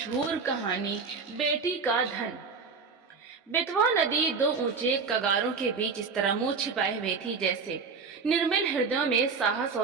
कहानी बेटी का धन। बेतवा नदी दो ऊंचे कगारों के बीच इस तरह मुंह छिपाए हुए थी जैसे निर्मल हृदयों में साहस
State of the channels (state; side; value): quieter; left; 5.0 dB